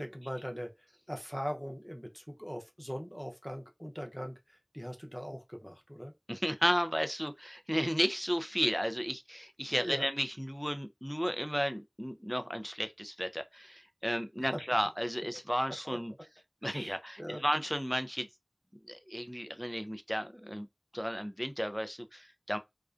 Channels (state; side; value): identical; both; correlation 1.00